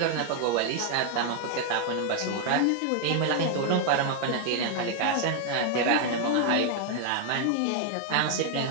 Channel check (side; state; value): both; different; correlation 0.00